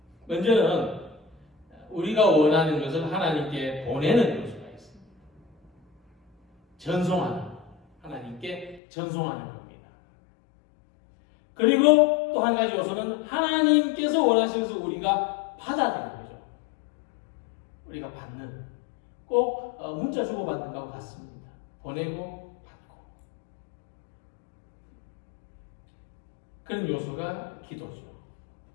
먼저는 우리가 원하는 것을 하나님께 보내는 요소가 있습니다. 전송하는, 하나님께 전송하는 겁니다. 그리고 또 한 가지 요소는 하나님께서 원하시는 것을 우리가 받아들이는 거죠. 우리가 받는, 꼭 문자 주고받는 것과 같습니다. 보내고 받고. 그런 요소가 기도죠.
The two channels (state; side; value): drops out; right; at 8.8 s